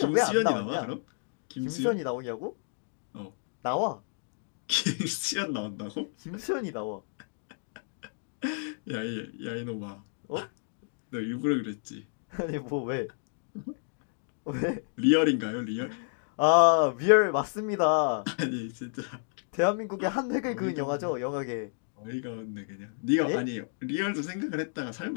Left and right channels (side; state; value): right; silent; digital silence